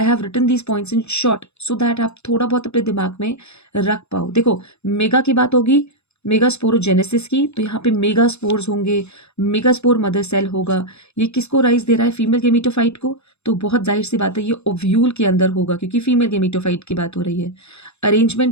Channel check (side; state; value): right; late; 0.80 ms